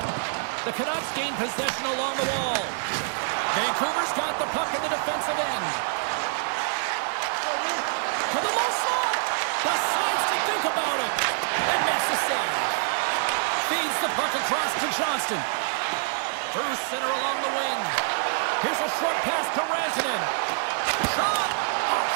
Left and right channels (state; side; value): silent; left; 61 dB below the other